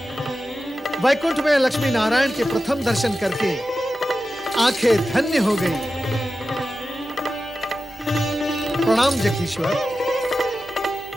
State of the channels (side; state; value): both; normal; correlation 0.93